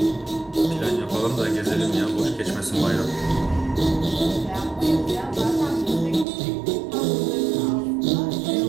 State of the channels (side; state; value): left; drops out; at 6.2 s